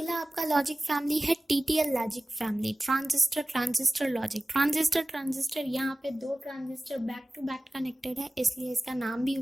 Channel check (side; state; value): both; normal; correlation 0.97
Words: आपका लॉजिक फैमिली है TTL logic family, transistor logic. Transistor यहाँ पे 2 transistor back to back connected है, इसलिए इसका नाम भी